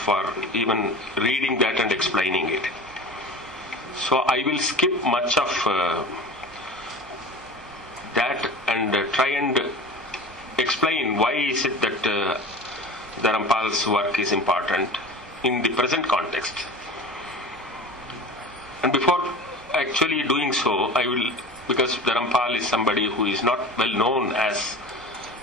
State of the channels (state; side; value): normal; both; correlation 0.35